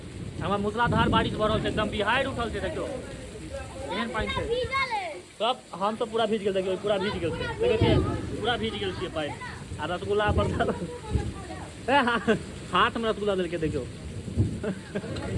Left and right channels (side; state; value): both; identical; correlation 1.00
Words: हमार मूसलाधार बारिश भऽ रहल छै, एकदम बिहार उठल छै। देखियो एहन पानी छै सब, हम तो पूरा भीज गेल, देखियो पूरा भीज गेल छै, देखिए पूरा भीज गेल छियै पानी। आ रसगुल्ला पर हाथ में रसगुल्ला देलकै, देखियो